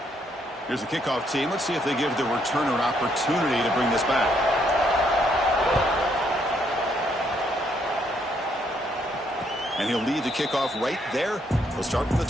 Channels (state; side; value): normal; both; correlation 0.72